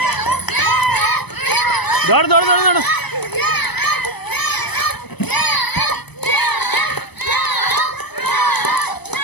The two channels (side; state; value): right; late; 0.99 ms